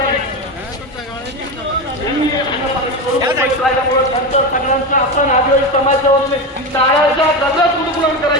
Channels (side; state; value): both; normal; correlation 0.18